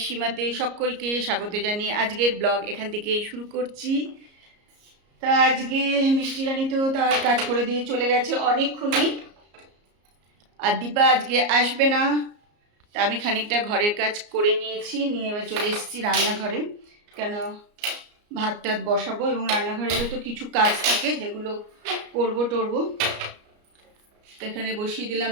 সীমাতে সকলকে স্বাগত জানিয়ে আজকের ব্লগ এখান থেকে শুরু করছি। তা আজকে মিষ্টি রানী তো তার কাজ করে দিয়ে চলে গেছে অনেকক্ষণই, আর দীপা আজকে আসবে না। তা আমি খানিকটা ঘরের কাজ করে নিয়েছি, নিয়ে এবার চলে এসেছি রান্নাঘরে। কেন ভাত টাত বসাবো এবং রান্নাঘরেরও তো কিছু কাজ থাকে যেগুলো করবো টরবো। তো এখানে বসিয়ে দিলাম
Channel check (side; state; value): left; late; 34 ms